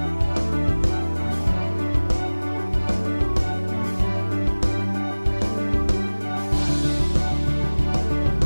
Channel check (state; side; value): inverted; both; correlation -1.00